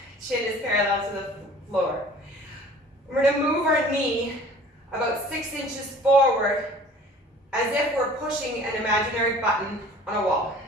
Chin is parallel to the floor. We're going to move our knee about 6 inches forward as if we're pushing an imaginary button on a wall.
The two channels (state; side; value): normal; both; correlation 0.47